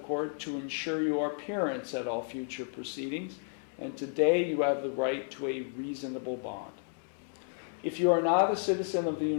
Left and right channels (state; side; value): silent; right; 56 dB below the other